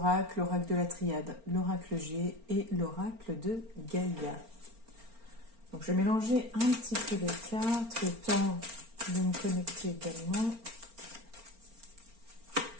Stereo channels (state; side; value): late; left; 4.4 ms